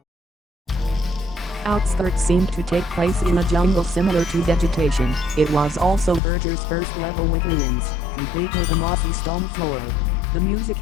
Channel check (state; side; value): drops out; right; at 6.2 s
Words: Outskirts seemed to take place in a jungle similar to Vegetation. It was also Verger's first level with ruins, complete with a mossy stone floor. The music